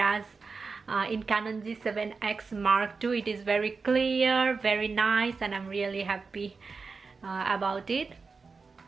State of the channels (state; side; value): quieter; left; 4.6 dB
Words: in Canon G7x Mark II it is very clear, very nice, and I'm really happy about it.